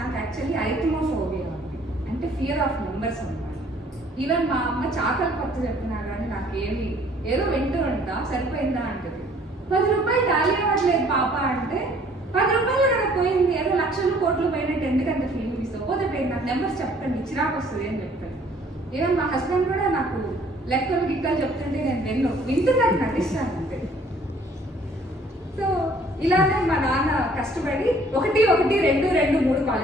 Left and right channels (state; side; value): normal; both; correlation 0.58